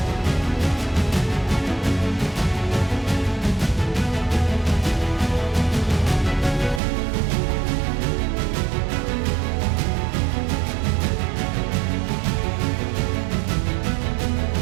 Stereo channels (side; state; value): left; drops out; at 6.8 s